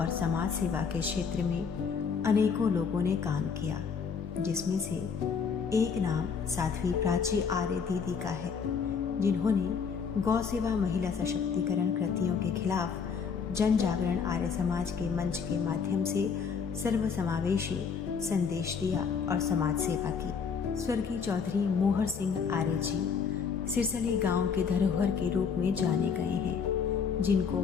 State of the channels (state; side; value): quieter; right; 6.1 dB